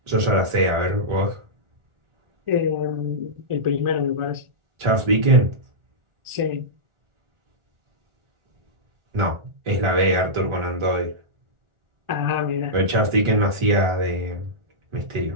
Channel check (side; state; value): left; late; 1.4 ms